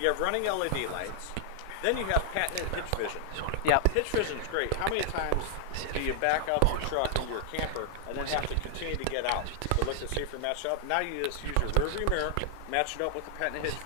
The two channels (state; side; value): different; both; correlation 0.00